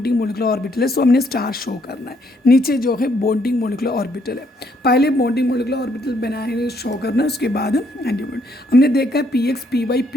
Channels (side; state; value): both; normal; correlation 0.70